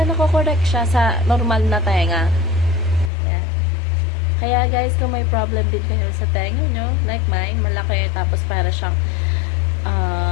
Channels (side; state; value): right; drops out; at 3.1 s